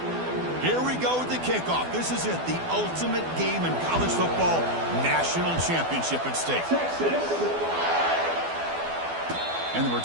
Here we go with the kickoff. This is it, the ultimate game in college football, national championship at stake. And the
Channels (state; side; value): late; left; 12 ms